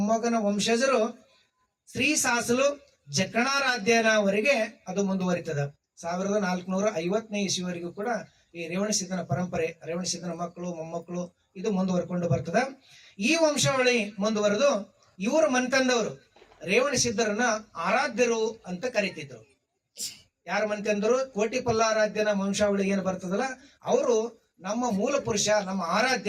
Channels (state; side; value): identical; both; correlation 1.00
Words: ವಂಶಜರು ಶ್ರೀ ಸಾಸಲು ಜಕಣಾರಾಧ್ಯನವರೆಗೆ ಅದು ಮುಂದುವರಿತದ. 1450ನೇ ಇಸ್ವಿವರೆಗೂ ಕೂಡ ಈ ರೇವಣಸಿದ್ಧನ ಪರಂಪರೆ, ರೇವಣಸಿದ್ಧನ ಮಕ್ಕಳು ಮೊಮ್ಮಕ್ಕಳು ಇದು ಮುಂದುವರ್ಕೊಂಡು ಬರ್ತದ. ಈ ವಂಶಾವಳಿ ಮುಂದುವರೆದು ಇವರು ಮನ್ತಂದವರು ರೇವಣಸಿದ್ಧರನ್ನ ಆರಾಧ್ಯರು ಅಂತ ಕರೀತಿದ್ರು. ಯಾರ ಮನ್ತಂದರು? ಕೋಟಿ ಪಲ್ಲಾರಾಧ್ಯನ ವಂಶಾವಳಿ ಏನು ಬರ್ತದಲ್ಲ, ಅವರು ನಮ್ಮ ಮೂಲ ಪುರುಷ, ನಮ್ಮ